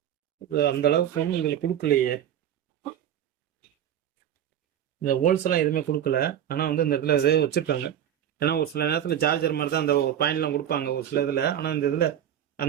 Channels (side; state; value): left; quieter; 10.3 dB